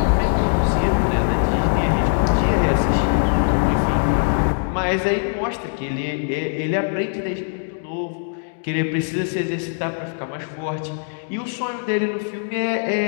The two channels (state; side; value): silent; right; digital silence